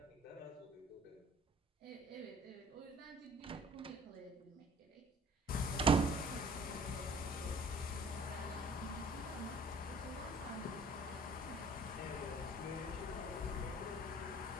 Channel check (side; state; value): both; normal; correlation 0.52